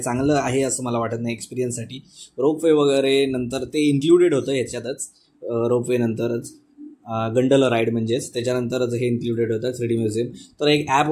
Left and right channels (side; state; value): both; identical; correlation 1.00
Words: चांगलं आहे असं मला वाटत नाही एक्सपिरियन्ससाठी. रोपवे वगैरे नंतर ते इन्क्लुडेड होतं याच्यातच, रोपवे नंतरच गंडला राईड म्हणजेच त्याच्यानंतरच हे इन्क्लुडेड होतं 3D म्युझियम. तर एक ॲप